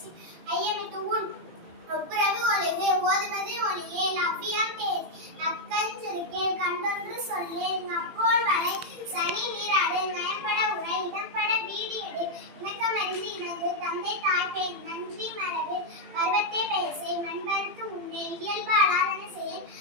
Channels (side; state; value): left; late; 18 ms